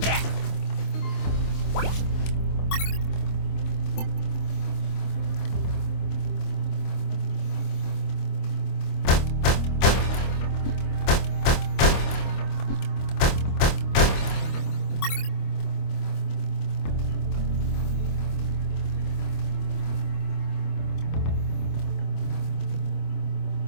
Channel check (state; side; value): late; right; 26 ms